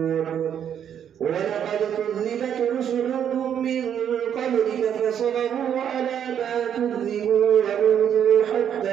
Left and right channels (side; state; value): left; quieter; 9.0 dB